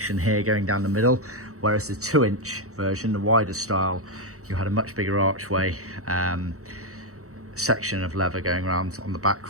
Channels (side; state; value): left; late; 0.65 ms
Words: here going down the middle, whereas the 2-inch version, the wider style, you had a much bigger archway section of leather going around on the